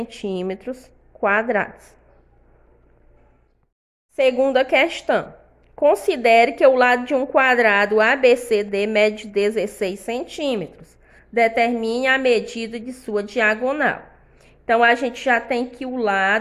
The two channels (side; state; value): both; identical; correlation 1.00